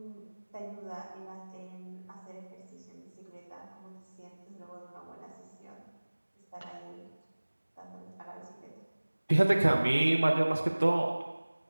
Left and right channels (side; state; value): both; inverted; correlation -1.00